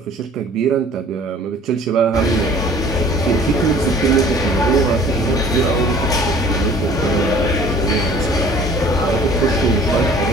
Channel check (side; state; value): both; normal; correlation 0.51